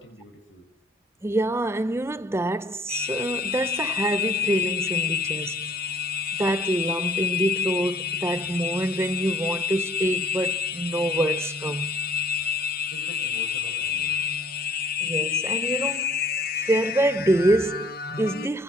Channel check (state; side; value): normal; both; correlation 0.56